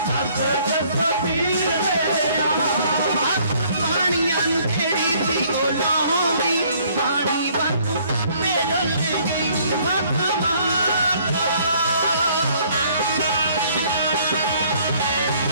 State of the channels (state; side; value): inverted; both; correlation -0.61